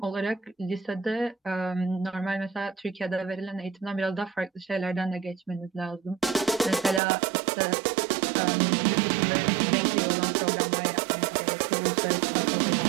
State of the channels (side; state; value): left; drops out; at 7.0 s